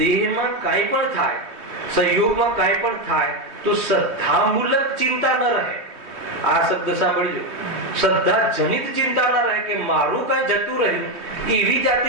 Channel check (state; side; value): late; left; 3.2 ms